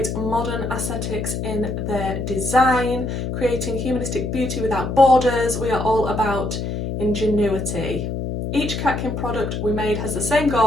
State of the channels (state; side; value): noise; left; hum, 3 dB below the sound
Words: modern aesthetics in their design, creating humanistic beauty without borders. We are all about ingenuity. Each Catkin product we made has the same